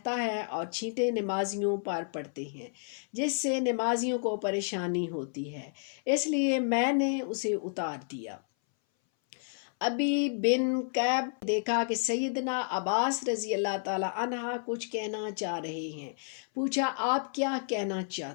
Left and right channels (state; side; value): silent; right; 57 dB below the other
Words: ہے اور چھینٹے نمازیوں پر پڑتے ہیں جس سے نمازیوں کو پریشانی ہوتی ہے، اس لیے میں نے اسے اتار دیا۔ ابی بن کعب دیکھا کہ سیدنا عباس رضی اللہ تعالی عنہ کچھ کہنا چاہ رہے ہیں، پوچھا آپ کیا کہنا